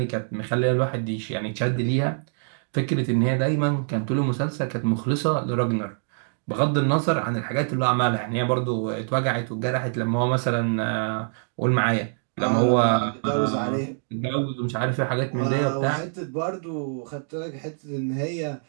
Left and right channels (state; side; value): silent; left; digital silence